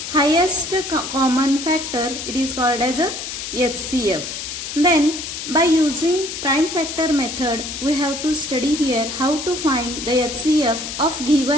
highest common factor, it is called as a HCF. Then by using prime factor method, we have to study here how to find the HCF of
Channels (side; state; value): left; noise; hiss, 7 dB below the sound